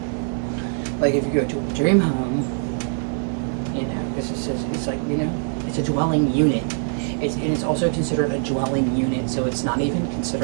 like, if you go to a dream home, you know, because it says it's like, you know, it's a dwelling unit. And it's also considered a dwelling unit, so it's not even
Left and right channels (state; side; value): silent; left; 63 dB below the other